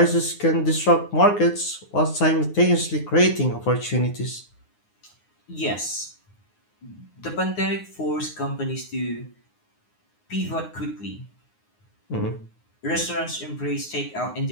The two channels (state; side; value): late; right; 9.6 ms